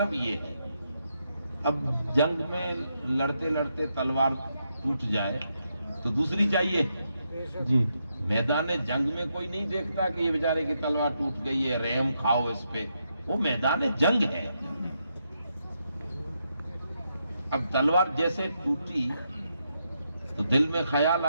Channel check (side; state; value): both; inverted; correlation -0.81